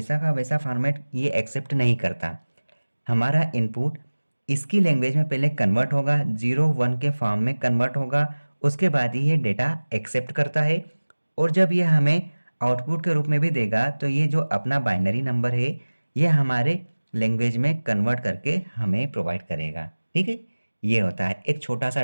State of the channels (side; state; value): both; inverted; correlation -1.00